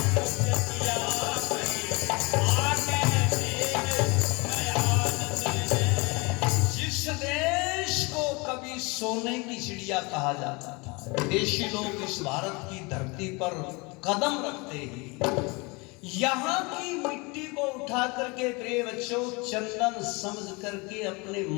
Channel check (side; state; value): right; quieter; 27.4 dB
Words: सोने की चिड़िया कहा जाता था, विदेशी लोग इस भारत की धरती पर कदम रखते ही यहाँ की मिट्टी को उठा करके प्रिय बच्चों चंदन समझ करके अपने